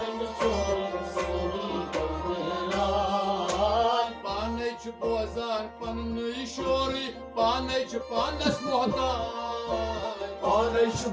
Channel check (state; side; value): identical; both; correlation 1.00